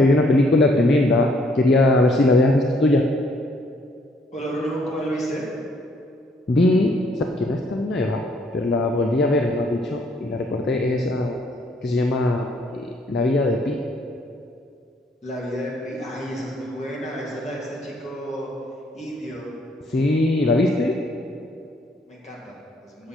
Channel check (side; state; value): both; normal; correlation 0.66